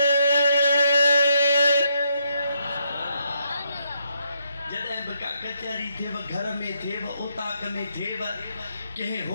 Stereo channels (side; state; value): both; inverted; correlation -0.77